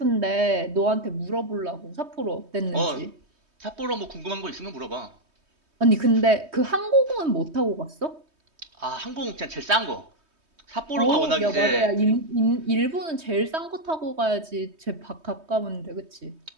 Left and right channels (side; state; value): left; late; 3.2 ms